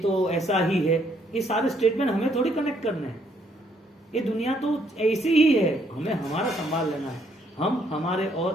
ऐसा ही है, ये सारे स्टेटमेंट हमें थोड़ी कनेक्ट करने हैं। ये दुनिया तो ऐसी ही है, हमें हमारा संभाल लेना है। हम हमारे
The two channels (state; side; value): normal; both; correlation 0.70